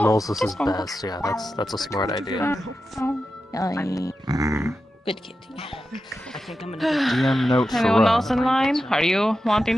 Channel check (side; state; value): both; normal; correlation 0.91